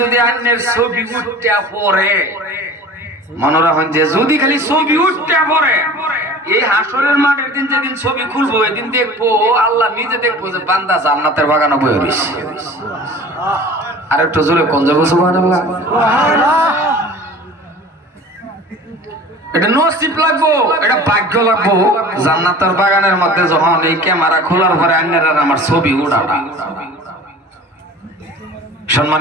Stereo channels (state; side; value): normal; both; correlation 0.42